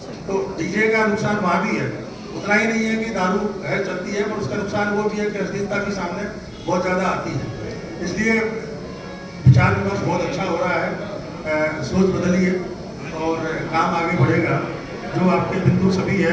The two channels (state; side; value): identical; both; correlation 1.00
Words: तो डीजे का नुकसान वहाँ भी है, उतना ही नहीं है कि दारू है चलती है, पर उसका नुकसान वो भी है कि अश्लीलता भी सामने बहुत ज़्यादा आती है। इसलिए विचार विमर्श बहुत अच्छा हो रहा है, सोच बदलिए और काम आगे बढ़ेगा। जो आपके बिंदु सभी